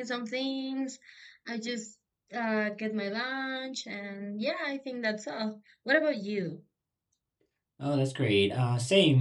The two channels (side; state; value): both; identical; correlation 1.00